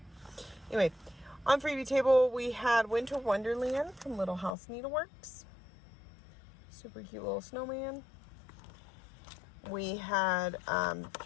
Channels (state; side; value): drops out; right; at 4.5 s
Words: Anyway, on freebie table we had Winter Wonderland from Little House Needleworks. Super cute little snowman. We had